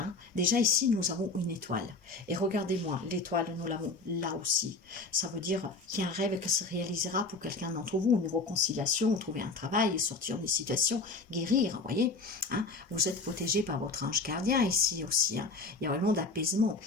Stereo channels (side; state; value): right; quieter; 3.7 dB